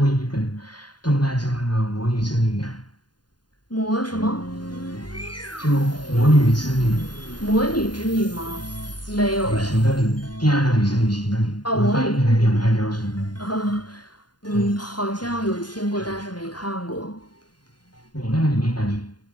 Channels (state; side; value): late; right; 0.70 ms